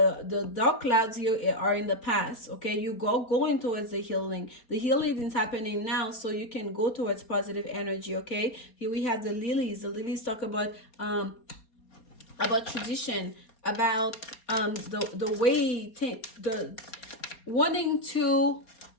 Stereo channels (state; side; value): late; right; 4.3 ms